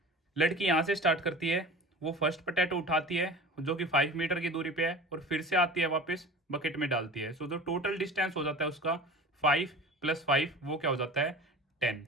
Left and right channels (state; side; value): normal; both; correlation 0.37